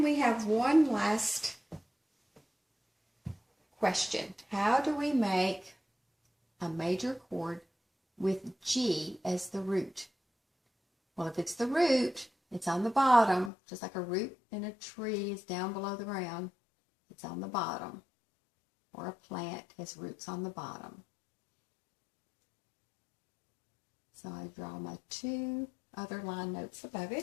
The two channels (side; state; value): right; drops out; at 13.5 s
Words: we have one last question. How do we make a major chord with G as the root? Well, if it's the root, it's on the bottom, just like a root in a tree is down below the ground. It's on the bottom. Or a plant has roots on the bottom. So I draw my 2 other line notes above